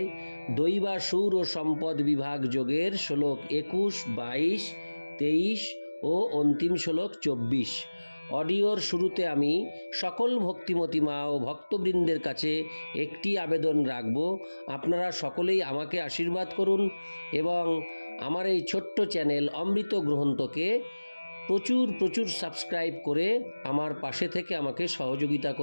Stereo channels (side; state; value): both; inverted; correlation -1.00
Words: দৈবাসুর ও সম্পদ বিভাগ যোগের শ্লোক 21, 22, 23 ও অন্তিম শ্লোক 24। অডিওর শুরুতে আমি সকল ভক্তিমতী মা ও ভক্তবৃন্দের কাছে একটি আবেদন রাখব, আপনারা সকলেই আমাকে আশীর্বাদ করুন এবং আমার এই ছোট্ট চ্যানেল অমৃত গ্রন্থকে প্রচুর সাবস্ক্রাইব করে আমার পাশে থেকে আমাকে সহযোগিতা